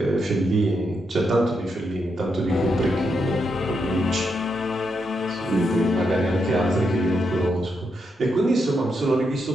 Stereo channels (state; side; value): normal; both; correlation 0.82